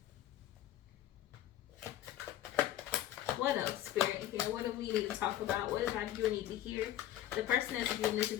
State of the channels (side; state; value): right; quieter; 12.8 dB